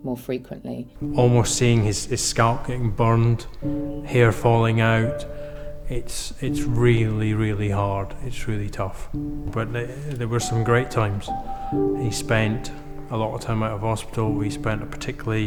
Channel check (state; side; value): identical; both; correlation 1.00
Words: more frequently. Almost seeing his scalp getting burned, hair falling out, it's really, really hard, it's really tough. But there were some great times. He spent a lot of time out of hospital. We spent a